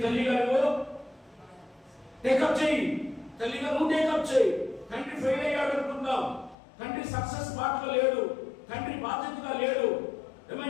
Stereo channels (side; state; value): right; drops out; at 6.6 s